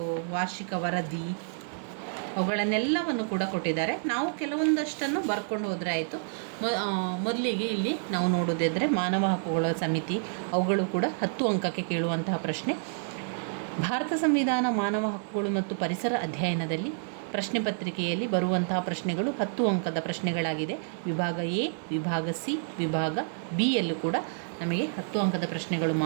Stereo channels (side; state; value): left; silent; 59 dB below the other